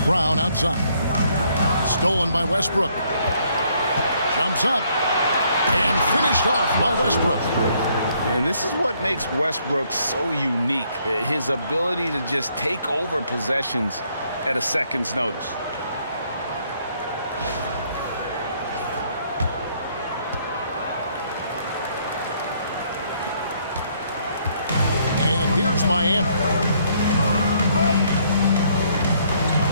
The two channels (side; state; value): both; inverted; correlation -0.68